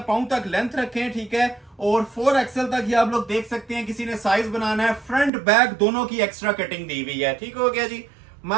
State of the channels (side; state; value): left; drops out; at 5.3 s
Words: पाँव तक लेंथ रखें, ठीक है। और 4XL तक ही आप लोग देख सकते हैं, किसी ने साइज बनाना है। फ्रंट बैक दोनों की एक्स्ट्रा कटिंग दी हुई है, ठीक हो गया जी।